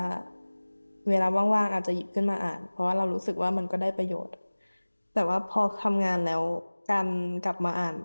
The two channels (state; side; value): inverted; both; correlation -1.00